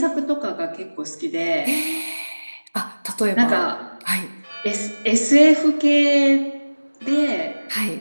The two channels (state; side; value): inverted; both; correlation -1.00